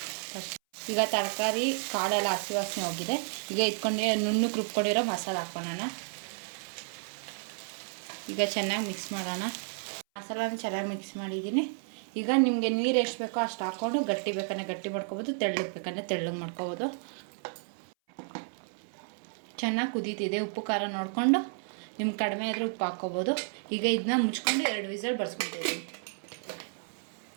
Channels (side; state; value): left; silent; 57 dB below the other